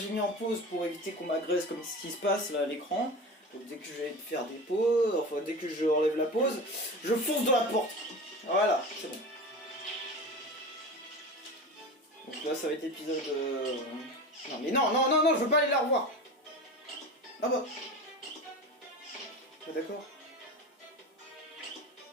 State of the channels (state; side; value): normal; both; correlation 0.30